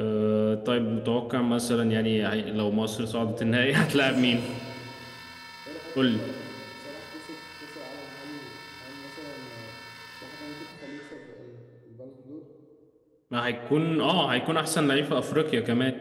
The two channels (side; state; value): both; identical; correlation 1.00